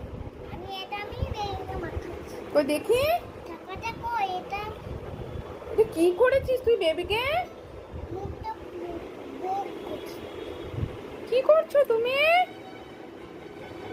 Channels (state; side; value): identical; both; correlation 1.00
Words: আমি বেবিকে মাখাচ্ছি। কই দেখি। টাকাটা কই এটা? এটা কি করেছিস তুই বেবিকে? মুখটা বের করছি। কি করছো তুমি?